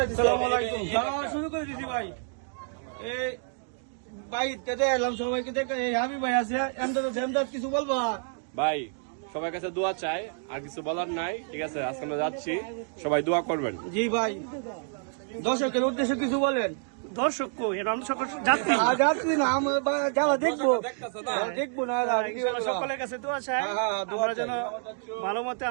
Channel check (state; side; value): silent; left; 56 dB below the other